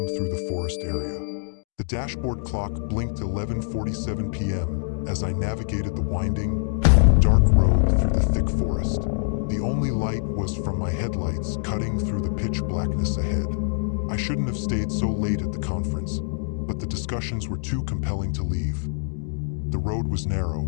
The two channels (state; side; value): silent; right; digital silence